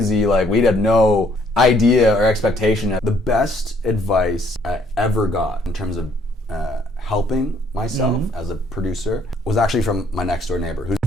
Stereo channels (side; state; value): both; normal; correlation 0.65